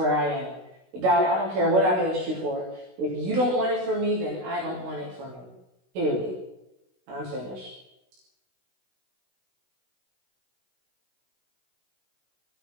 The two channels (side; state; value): left; late; 16 ms